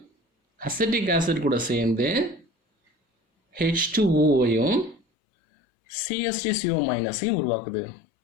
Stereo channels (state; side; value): drops out; right; at 5.0 s